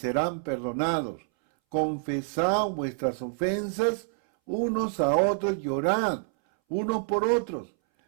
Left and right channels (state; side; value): silent; left; 60 dB below the other